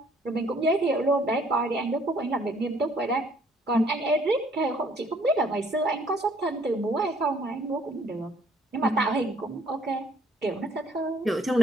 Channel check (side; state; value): both; normal; correlation 0.62